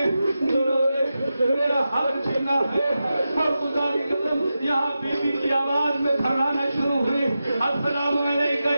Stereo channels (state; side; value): inverted; both; correlation -0.91